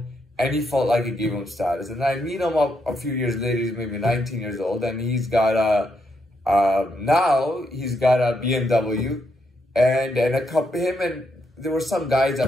and he felt like it gave him status. And I meet him up a few years later, he's maybe 19 years old, and he's got now he's got a BMW, and a couple, him and there were some guys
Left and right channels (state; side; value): normal; both; correlation 0.79